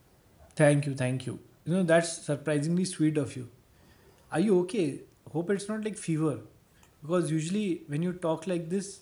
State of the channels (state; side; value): identical; both; correlation 1.00